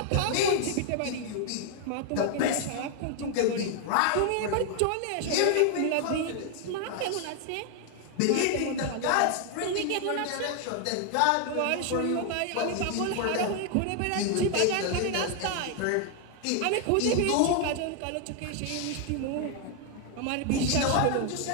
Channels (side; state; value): both; different; correlation 0.00